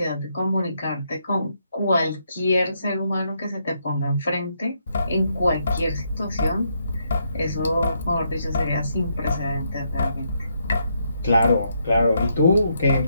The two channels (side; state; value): both; inverted; correlation -0.77